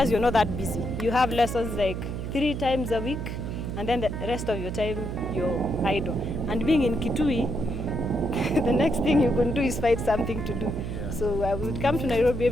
you're not that busy. You have lessons like 3 times a week, and then the rest of your time you're idle. And being in Kitui, the next thing you can do is find something to do. Yeah. So I would come to Nairobi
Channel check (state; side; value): noise; right; hum, 5 dB below the sound